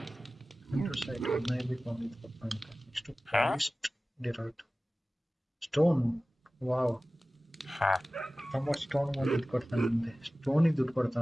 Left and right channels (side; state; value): both; normal; correlation 0.97